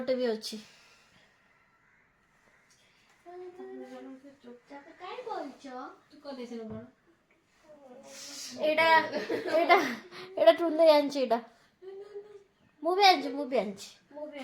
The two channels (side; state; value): both; identical; correlation 1.00